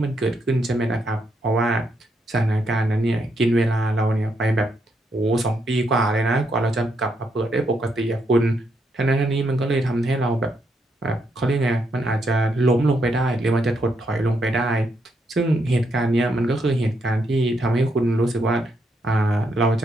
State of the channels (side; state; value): both; normal; correlation 0.78